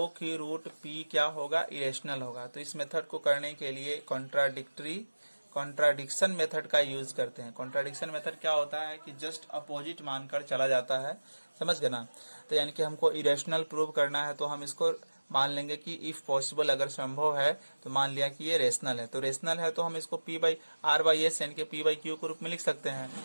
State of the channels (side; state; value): both; inverted; correlation -1.00